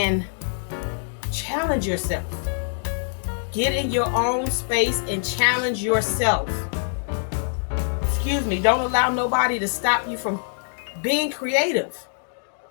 challenge yourself. Get in your own space and challenge yourself. Excuse me, don't allow nobody to stop you from being creative.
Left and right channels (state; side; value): silent; right; digital silence